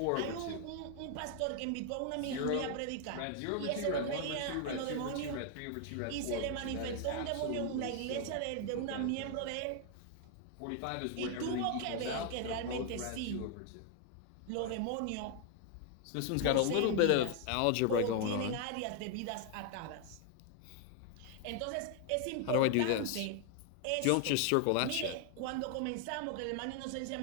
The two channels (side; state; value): both; different; correlation 0.00